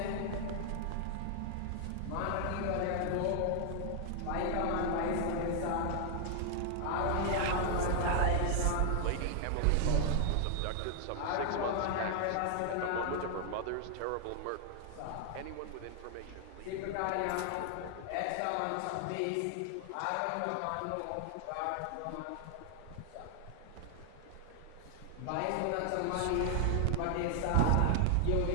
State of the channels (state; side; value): different; both; correlation 0.00